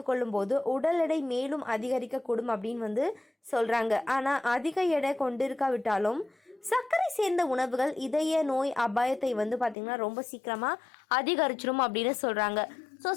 போது உடல் எடை மேலும் அதிகரிக்கக்கூடும் அப்படின்னு வந்து சொல்கிறாங்க. ஆனால் அதிக எடை கொண்டிருக்காவிட்டாலும் சர்க்கரை சேர்ந்த உணவுகள் இதய நோய் அபாயத்தை வந்து பார்த்திங்கன்னா ரொம்ப சீக்கிரமாக அதிகரிச்சிடும் அப்படின்னு சொல்கிறாங்க. ஸோ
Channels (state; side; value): drops out; right; at 9.8 s